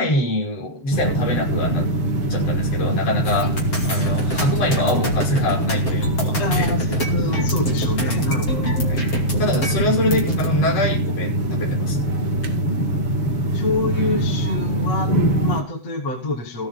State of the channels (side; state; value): right; late; 7.6 ms